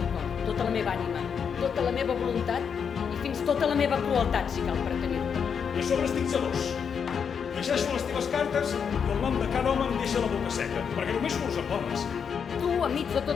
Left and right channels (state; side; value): quieter; right; 6.9 dB